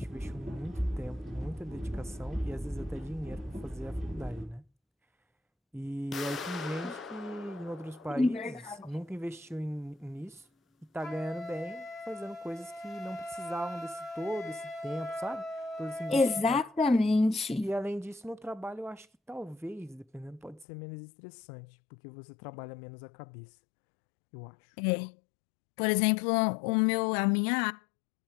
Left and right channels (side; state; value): right; drops out; at 20.7 s